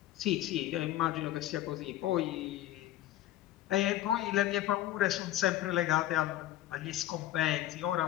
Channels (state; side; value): quieter; right; 14.1 dB